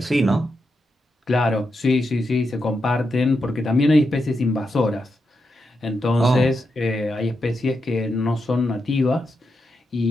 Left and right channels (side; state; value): both; normal; correlation 0.85